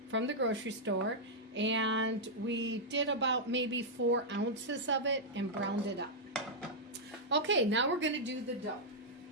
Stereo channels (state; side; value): normal; both; correlation -0.06